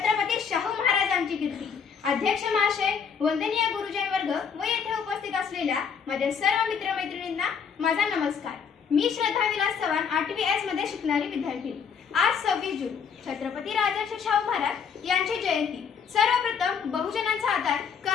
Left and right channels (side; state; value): right; quieter; 6.6 dB